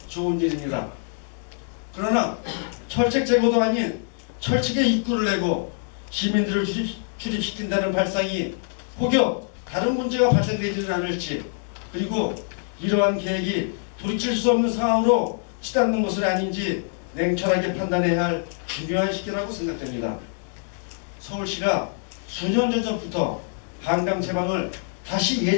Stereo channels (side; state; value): right; silent; digital silence